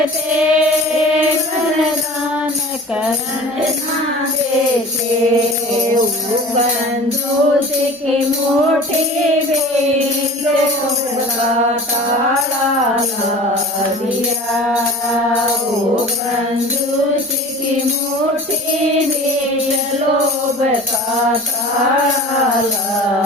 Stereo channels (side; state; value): both; normal; correlation 0.39